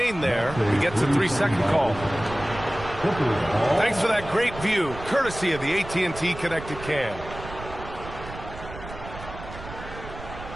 there. He gets a 3-second call. Thanks for that great view, courtesy of the AT&T Connected Cam.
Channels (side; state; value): right; noise; rumble, 13 dB below the sound